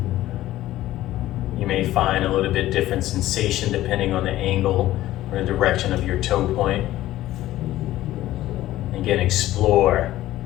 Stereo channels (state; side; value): quieter; right; 14.9 dB